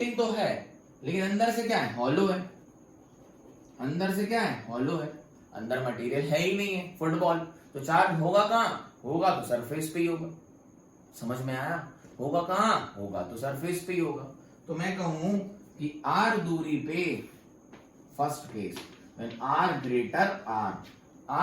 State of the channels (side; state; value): both; identical; correlation 1.00